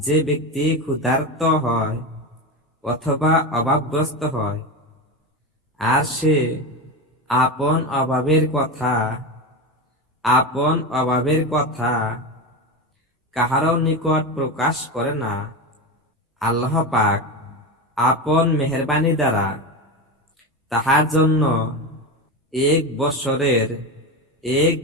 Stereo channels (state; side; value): normal; both; correlation 0.19